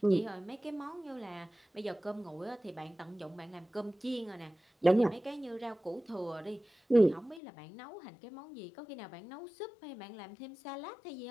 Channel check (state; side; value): drops out; right; at 7.4 s